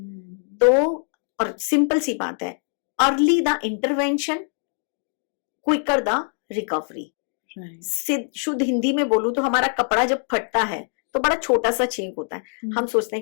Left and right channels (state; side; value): silent; right; 57 dB below the other